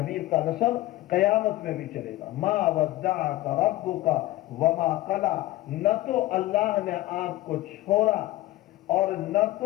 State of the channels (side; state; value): right; quieter; 16.9 dB